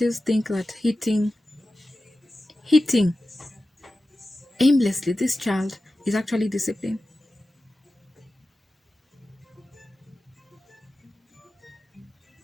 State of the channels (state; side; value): normal; both; correlation 0.94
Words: think that hitting aimlessly this child is actually discipline.